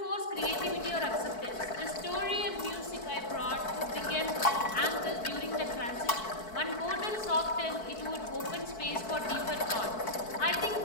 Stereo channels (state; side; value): late; right; 4.6 ms